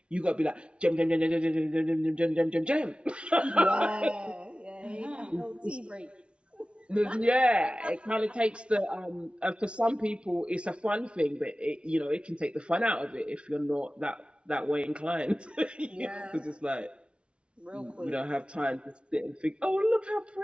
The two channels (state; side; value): late; left; 0.058 ms